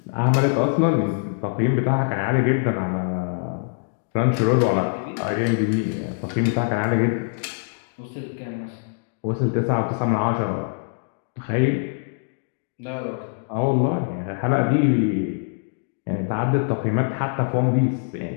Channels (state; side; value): silent; right; digital silence